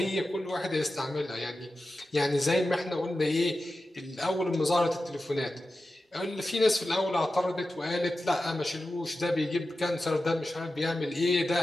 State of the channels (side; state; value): both; normal; correlation 0.93